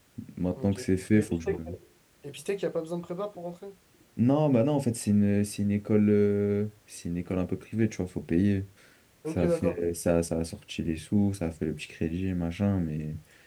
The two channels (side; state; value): both; identical; correlation 1.00